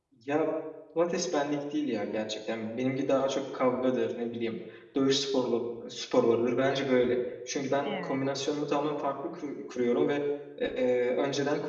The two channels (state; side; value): identical; both; correlation 1.00